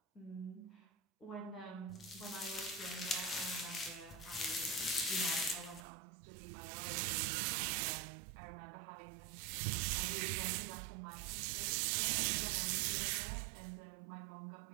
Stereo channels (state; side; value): drops out; left; at 5.9 s